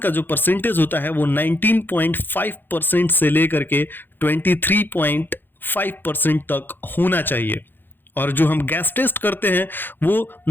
जो परसेंटेज होता है वो 19.5% से लेकर के 23.5% तक होना चाहिए। और जो हम गैस टेस्ट करते हैं वो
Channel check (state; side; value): late; right; 0.096 ms